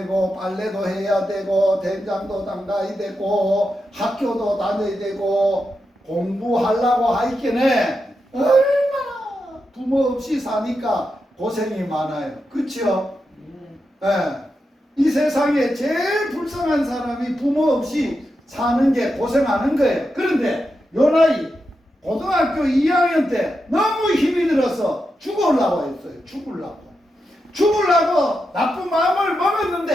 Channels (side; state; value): both; normal; correlation 0.87